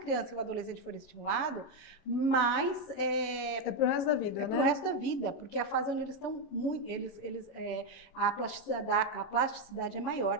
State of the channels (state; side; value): late; right; 11 ms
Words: e o adolescente for estimulado, mais é para o resto da vida, para o resto da vida, porque a fase onde eles estão a plasticidade é